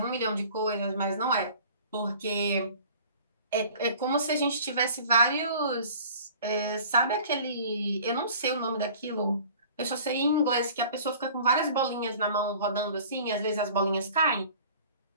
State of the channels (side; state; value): both; inverted; correlation -0.47